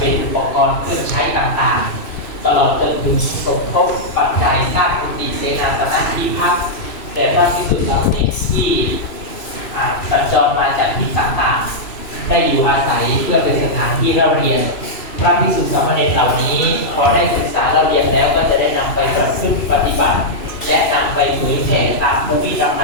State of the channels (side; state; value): right; late; 2.7 ms